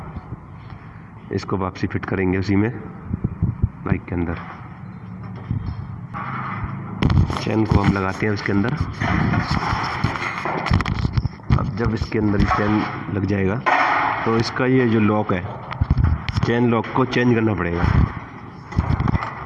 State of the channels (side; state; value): both; identical; correlation 1.00